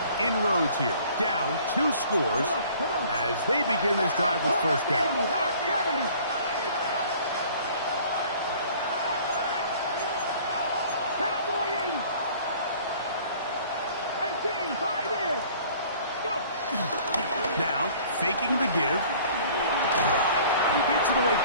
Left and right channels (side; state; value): both; inverted; correlation -0.52